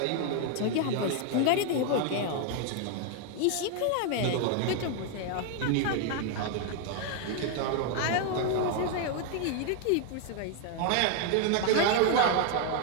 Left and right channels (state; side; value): different; both; correlation 0.00